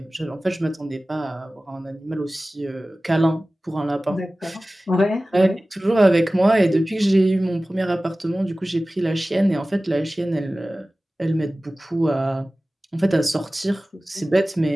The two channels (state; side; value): normal; both; correlation 0.97